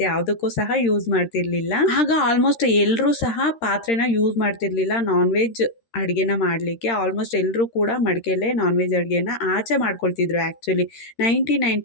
ಯಾವುದಕ್ಕೂ ಸಹ ಯೂಸ್ ಮಾಡ್ತಿರ್ಲಿಲ್ಲ. ಆಗ ಆಲ್ಮೋಸ್ಟ್ ಎಲ್ಲರೂ ಸಹ ಪಾತ್ರೆನ ಯೂಸ್ ಮಾಡ್ತಿರ್ಲಿಲ್ಲ ನಾನ್ ವೆಜ್ ಅಡುಗೆನ ಮಾಡಲಿಕ್ಕೆ. ಆಲ್ಮೋಸ್ಟ್ ಎಲ್ಲರೂ ಕೂಡ ಮಡಿಕೆಯಲ್ಲೇ ನಾನ್ ವೆಜ್ ಅಡುಗೆನ ಆಚೆ ಮಾಡ್ಕೊಳ್ತಿದ್ರು. ಆ್ಯಕ್ಚುಲಿ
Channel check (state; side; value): late; right; 13 ms